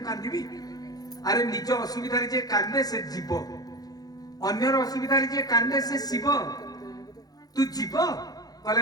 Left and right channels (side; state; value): right; late; 0.19 ms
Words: कांदी अरे निज असुविधा जे कांदे से जीव अन्यर असुविधा जे कांदे से शिव तू जीव